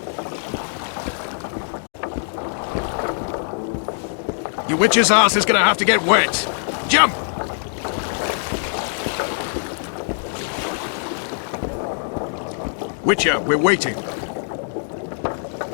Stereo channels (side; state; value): right; silent; digital silence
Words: Your witch's ass is gonna have to get wet. Jump! Witcher, we're waiting.